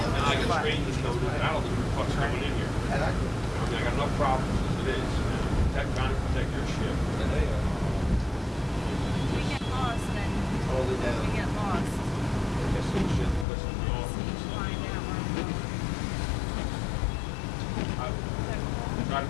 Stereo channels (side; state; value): right; drops out; at 13.5 s